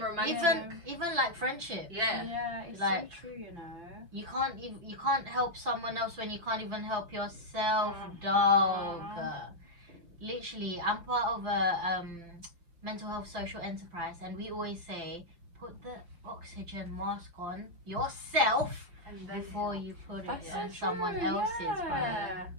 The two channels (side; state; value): left; late; 5.8 ms